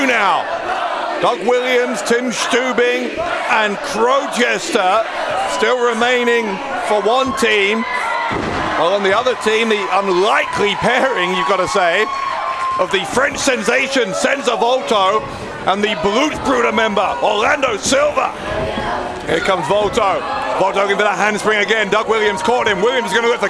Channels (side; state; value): both; identical; correlation 1.00